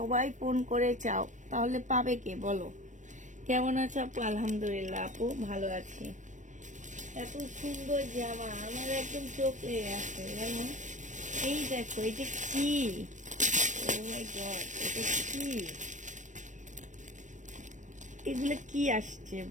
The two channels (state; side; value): late; left; 0.36 ms